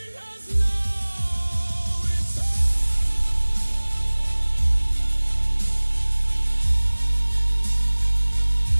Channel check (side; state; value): both; inverted; correlation -1.00